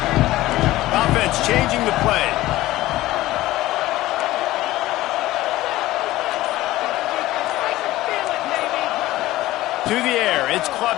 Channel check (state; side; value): quieter; right; 16.7 dB